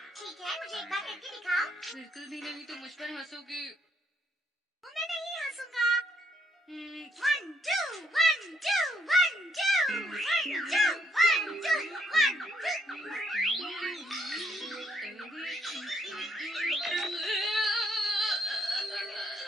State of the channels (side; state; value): both; normal; correlation 0.70